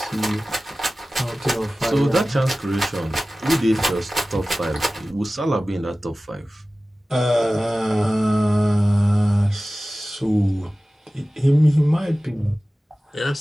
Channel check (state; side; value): normal; both; correlation 0.97